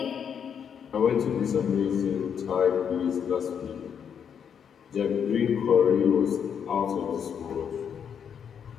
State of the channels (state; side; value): quieter; right; 7.7 dB